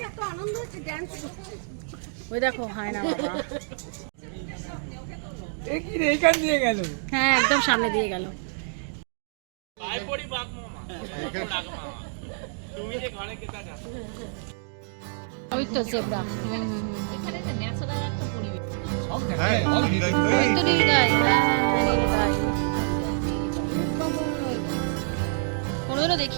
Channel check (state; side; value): silent; left; digital silence